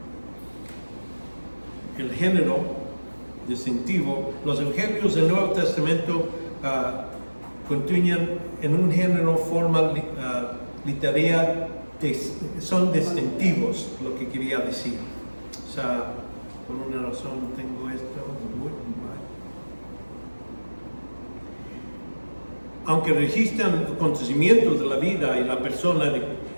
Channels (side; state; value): both; inverted; correlation -1.00